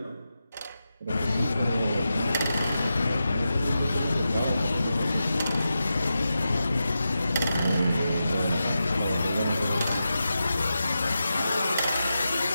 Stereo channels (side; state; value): both; inverted; correlation -0.90